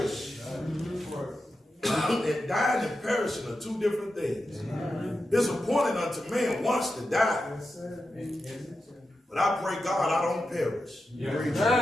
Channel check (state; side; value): normal; both; correlation 0.90